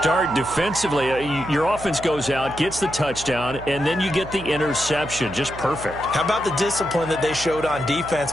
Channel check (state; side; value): noise; right; hum, 13 dB below the sound